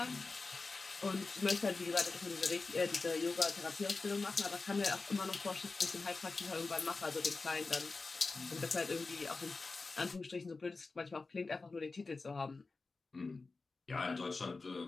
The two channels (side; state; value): right; quieter; 3.9 dB